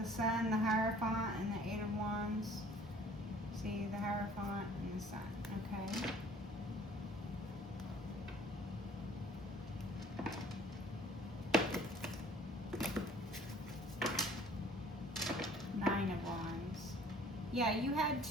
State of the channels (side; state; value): both; normal; correlation 0.53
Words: Sun, the Hierophant, and the Eight of Wands. See, the Hierophant and the Sun. Okay. Nine of Wands. Yeah, you had